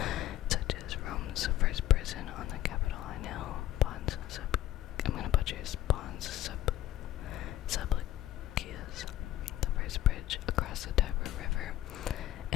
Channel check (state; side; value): quieter; right; 13.6 dB